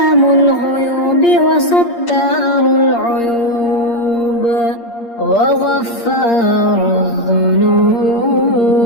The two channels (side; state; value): right; late; 8.6 ms